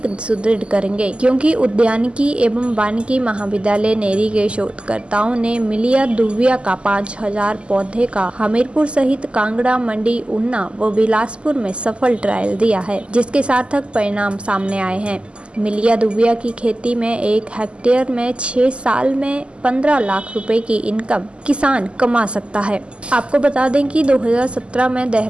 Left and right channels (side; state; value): left; late; 0.053 ms